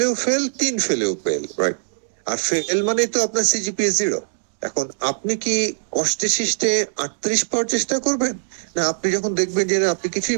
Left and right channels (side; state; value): left; silent; digital silence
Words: ফেল, 3 ফেলেও ফেল, রাইট? আর ফেল মানে তো আপনার CGPA 0। এখন আপনি কি কষ্টে শিষ্টে 38 পাওয়ার চেষ্টা করবেন, না আপনি যখন দেখবেন যে না, আপনি